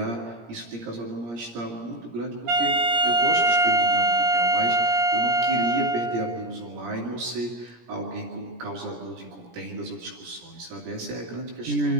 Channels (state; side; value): late; left; 17 ms